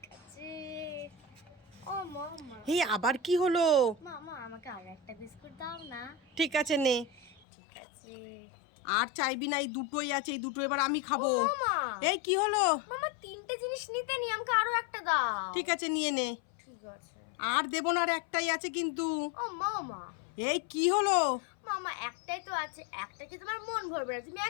ঠিক আছে। ও মামা, এই আবার কি হলো? মামা আমাকে আরো একটা বিস্কুট দাও না। ঠিক আছে, নে। ঠিক আছে। আর চাইবি না, এই দুটোই আছে, এই দুটো এবার আমি খাবো। মামা, এই কি হলো? মামা তিনটে জিনিস নিতে নি, আমাকে আরো একটা দাও। ঠিক আছে, নিয়ে নে। ঠিক আছে। আর দেবো না, আর একটাই আছে কিন্তু। ও মামা, এই কি হলো? মামা একটাই তো আছে, একটা কি তোমার মন ভরবে না? তুমি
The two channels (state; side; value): drops out; right; at 7.4 s